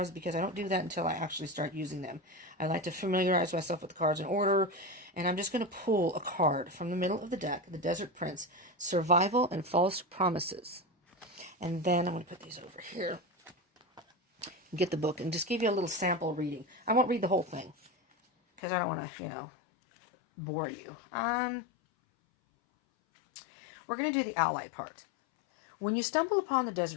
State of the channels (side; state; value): right; drops out; at 18.6 s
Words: because I don't do that until I actually start using them. I like to familiarize myself with the cards in order, and I'm just going to pull a card from the middle of the deck, the Desert Prince, Survival and False Promises. And then I'm going to put these over here, get the book, and just give you a little sample reading. I won't read the whole thing because I don't want to, bore you. We're going to do the ally part. When you stumble upon the